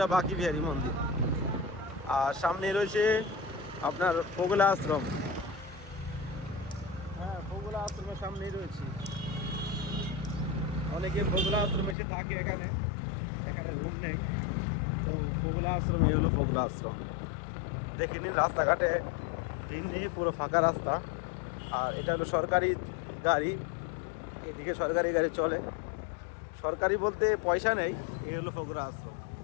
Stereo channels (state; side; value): drops out; right; at 12.0 s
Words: বাকি বিহারী মন্দির। আর সামনে রয়েছে আপনার ফোগলা আশ্রম। হ্যাঁ, ফোগলা আশ্রমের সামনেই রয়েছি। অনেকে ফোগলা আশ্রমে এসে থাকে, এখানে রুম নেই। তো ফোগলা আশ্রম, এই হলো ফোগলা আশ্রম। দেখে নিন রাস্তাঘাটে ভিড় নেই, পুরো ফাঁকা রাস্তা। আর এটা হলো সরকারি গাড়ি, এদিকে সরকারি গাড়ি চলে। সরকারি বলতে পয়সা নেই। এই হলো ফোগলা আশ্রম,